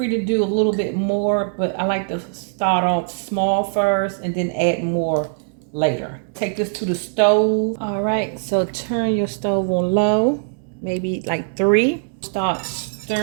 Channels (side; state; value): left; silent; digital silence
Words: to do a little bit more, but I like to start off small first and then add more later. Take this to the stove. All right, so turn your stove on low, maybe like 3. Start